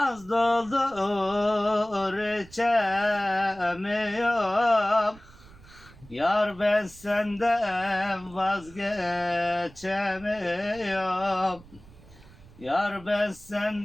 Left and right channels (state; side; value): noise; right; rumble, 22 dB below the sound